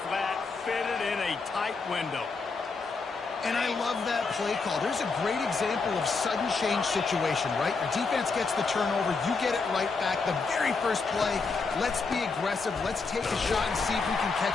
flat fit it in a tight window. And I love that play call. There's a great example of sudden change situation, right? Your defense gets the turnover. You get it right back. The very first play, let's be aggressive. Let's take a shot and see if we can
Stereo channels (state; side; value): quieter; right; 4.4 dB